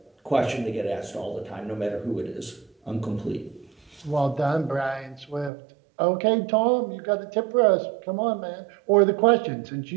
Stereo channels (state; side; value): drops out; left; at 5.5 s